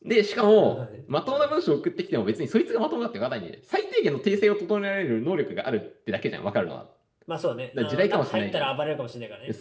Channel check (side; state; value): both; identical; correlation 1.00